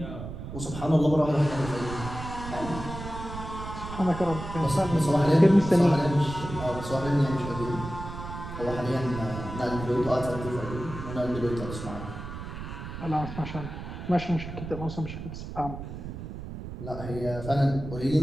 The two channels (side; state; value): right; noise; rumble, 9 dB below the sound